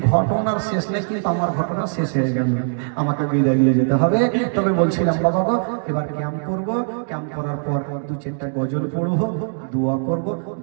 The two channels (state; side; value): silent; left; digital silence